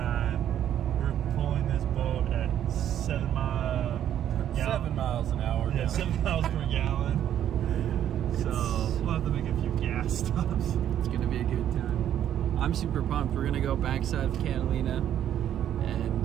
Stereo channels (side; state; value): left; quieter; 10.6 dB